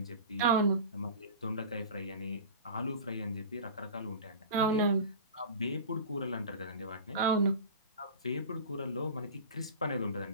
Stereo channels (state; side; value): inverted; both; correlation -0.35